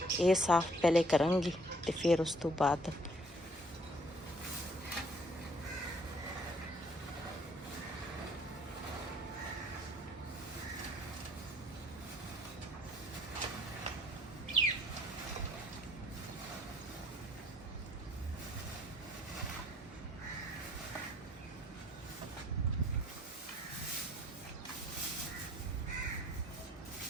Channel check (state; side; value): normal; both; correlation 0.60